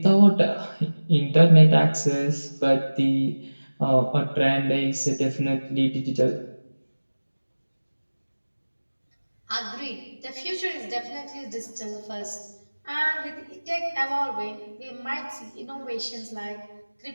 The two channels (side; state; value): both; inverted; correlation -1.00